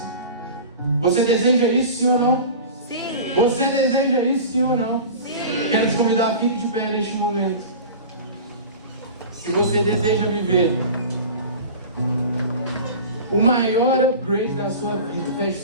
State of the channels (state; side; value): inverted; both; correlation -0.35